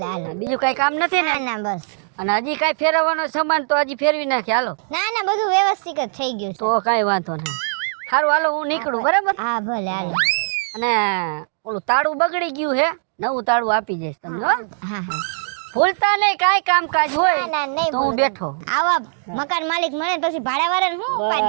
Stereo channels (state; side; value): silent; left; digital silence